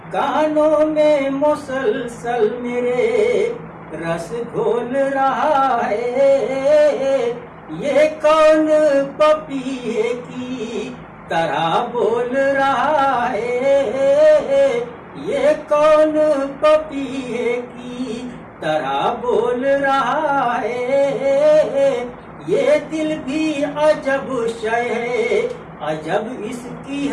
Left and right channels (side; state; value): both; identical; correlation 1.00